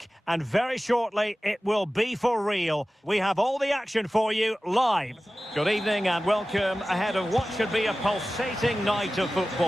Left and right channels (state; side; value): normal; both; correlation 0.96